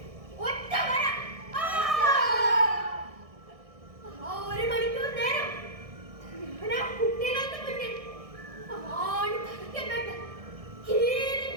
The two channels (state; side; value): late; left; 1.6 ms